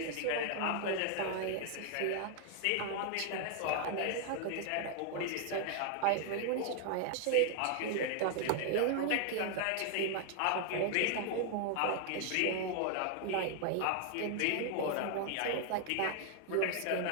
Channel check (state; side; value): different; both; correlation 0.00